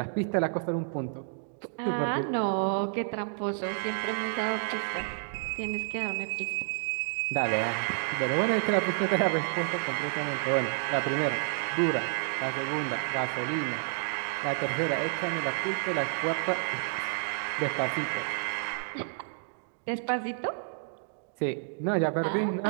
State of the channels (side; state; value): left; silent; 57 dB below the other